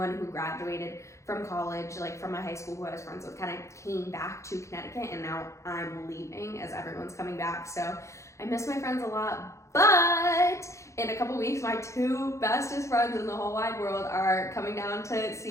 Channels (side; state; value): right; late; 0.14 ms